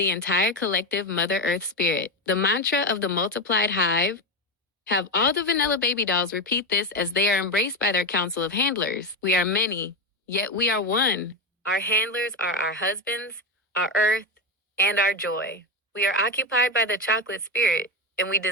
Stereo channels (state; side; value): normal; both; correlation 0.13